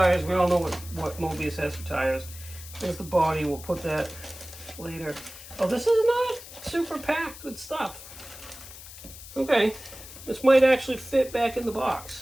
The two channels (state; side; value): noise; left; hiss, 15 dB below the sound